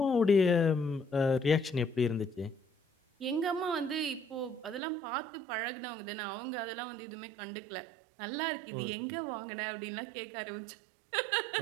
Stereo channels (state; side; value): drops out; left; at 4.8 s